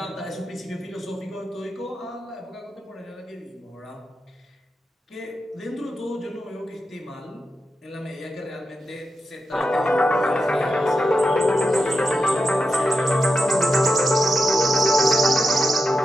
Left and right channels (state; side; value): normal; both; correlation 0.89